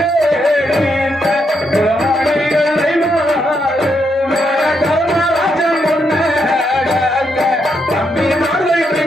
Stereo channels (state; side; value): normal; both; correlation 0.79